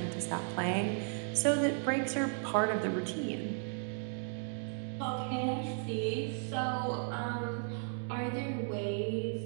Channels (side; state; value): left; silent; 54 dB below the other